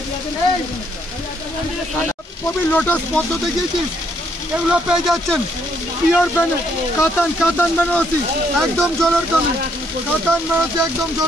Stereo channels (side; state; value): both; normal; correlation 0.71